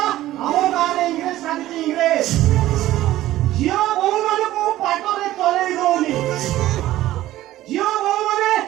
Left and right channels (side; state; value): left; quieter; 14.9 dB